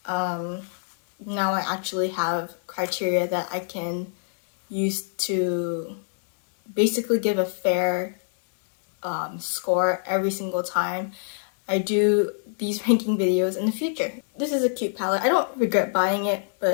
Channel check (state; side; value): silent; right; digital silence